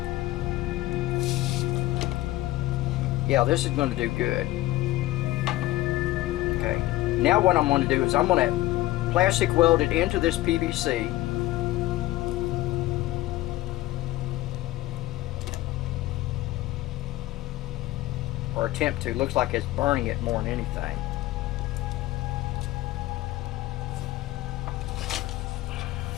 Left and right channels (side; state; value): right; quieter; 16.9 dB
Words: Yeah, this is going to do good. Okay, now what I'm going to do is I'm going to plastic weld it into this PVC. Or attempt to. Looks like it's burning it more than anything.